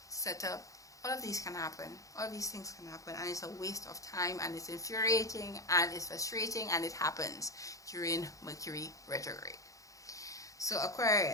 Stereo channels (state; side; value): late; right; 0.16 ms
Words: set up. All of these can happen. All of these things can happen, and it's a waste of time, and it's infuriating, and it's frustrating, and it happens during Mercury retrograde. So